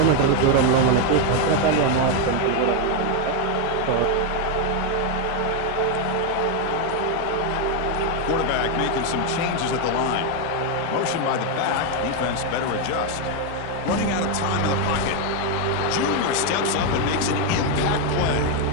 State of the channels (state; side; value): different; both; correlation 0.02